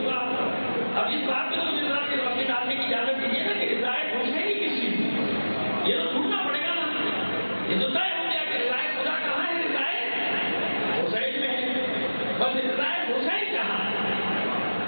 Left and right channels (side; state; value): both; inverted; correlation -1.00